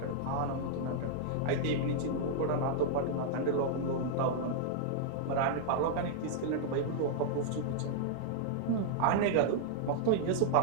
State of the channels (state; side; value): different; both; correlation -0.01